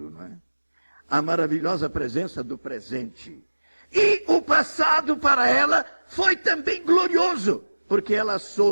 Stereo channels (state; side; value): inverted; both; correlation -1.00